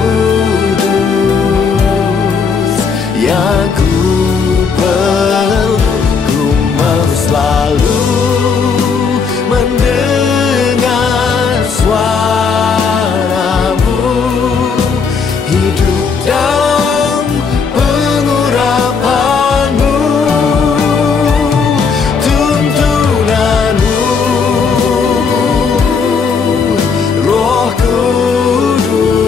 yang ku perlu. Ku mau selalu mendengar suaramu, hidup dalam pengurapan-Mu.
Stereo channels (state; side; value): quieter; right; 5.5 dB